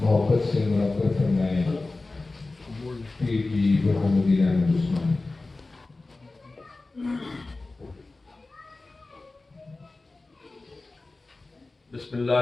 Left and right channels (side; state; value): right; quieter; 3.3 dB